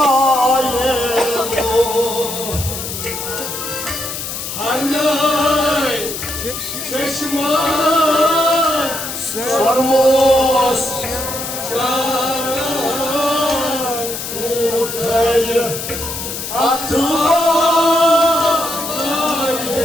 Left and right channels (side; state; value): left; noise; hiss, 6 dB below the sound